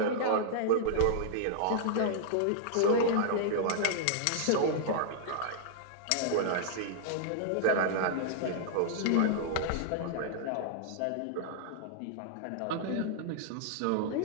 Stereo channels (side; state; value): both; different; correlation -0.01